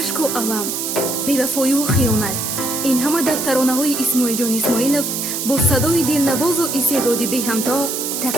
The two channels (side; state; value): right; noise; hiss, 3 dB below the sound